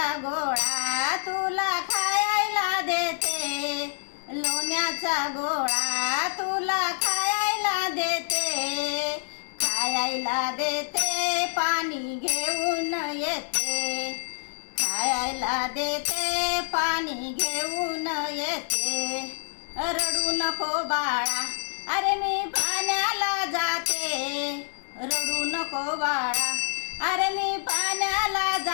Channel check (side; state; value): right; silent; digital silence